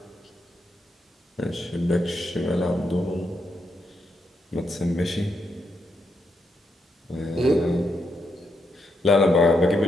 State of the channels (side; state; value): both; normal; correlation 0.80